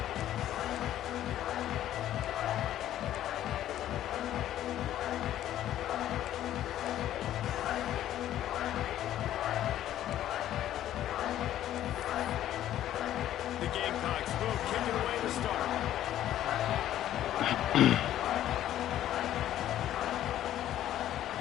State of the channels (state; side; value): quieter; right; 12.3 dB